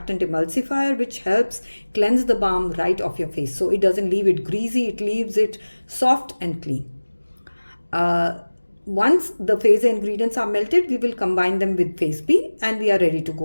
emulsifier which helps cleanse the balm right off your face. So it doesn't leave it greasy, it leaves it soft and clean. Once the phase A ingredients are melted, we will combine them with phase B and we are ready to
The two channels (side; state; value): both; inverted; correlation -1.00